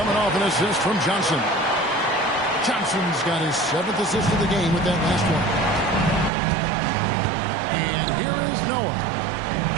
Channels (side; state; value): left; drops out; at 6.3 s